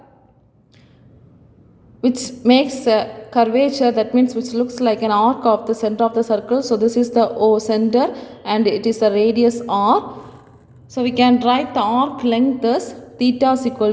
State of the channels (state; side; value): identical; both; correlation 1.00